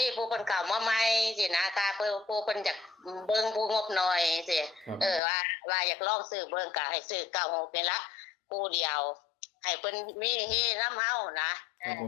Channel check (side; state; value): right; drops out; at 5.2 s